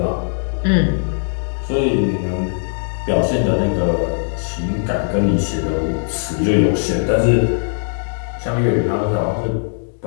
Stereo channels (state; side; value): silent; right; digital silence